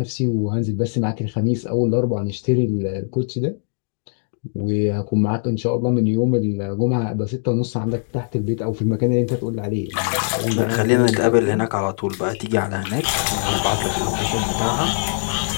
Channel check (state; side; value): silent; right; digital silence